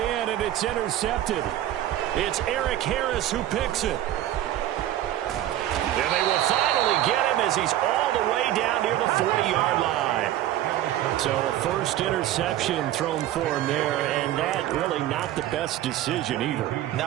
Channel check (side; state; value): left; quieter; 13.0 dB